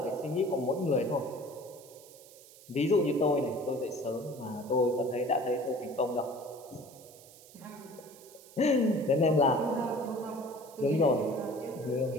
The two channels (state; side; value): noise; right; hiss, 21 dB below the sound